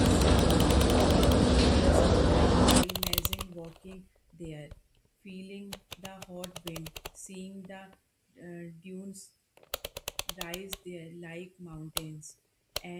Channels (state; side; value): identical; both; correlation 1.00